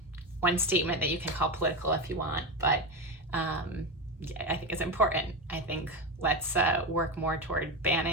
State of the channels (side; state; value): both; normal; correlation 0.15